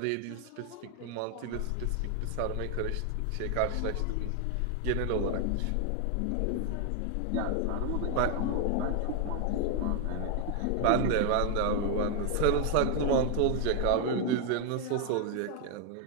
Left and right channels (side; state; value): both; different; correlation 0.00